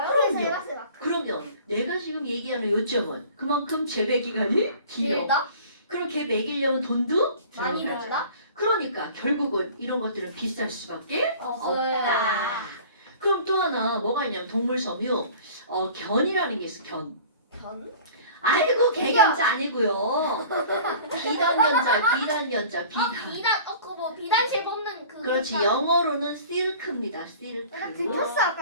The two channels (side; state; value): both; inverted; correlation -0.45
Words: 해봤어요. 마크. 그러면 내가 지금 얘기하는 요점은 그만큼 재배 기간이 길어. 길다? 그럼 걔 먹이려면 돈도 많이 들어가죠. 들다? 그러니까 결국은 이런 것들은 비쌀 수밖에 없어요. 없다. 그럼 또 하나 뭐가 있냐면 동물 섬유 견이라는 게 있어. 견. 견? 아이고 개견자 아니고요. 비단견자 비단. 그거 뭐 비단실 뽑는 그. 그렇지 영어로는 실크입니다. 실크. 내가 들켰어